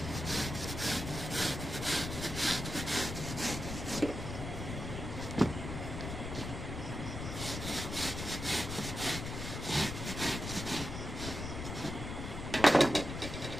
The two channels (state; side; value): noise; left; rumble, 6 dB below the sound